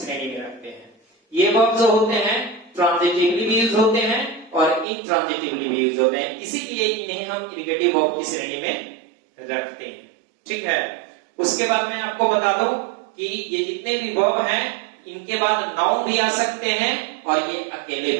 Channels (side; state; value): left; drops out; at 4.9 s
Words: में रखते हैं। ये वर्ब जो होते हैं ट्रांजिटिवली भी यूज होते हैं और इंट्रांजिटिवली भी यूज होते हैं, इसीलिए इन्हें हम इरिगेटिव वर्ब की श्रेणी में रखते हैं, ठीक है। उसके बाद मैं आपको बता दूं कि ये जितने भी वर्ब हैं इनके बाद नाउन भी आ सकते हैं और ये अकेले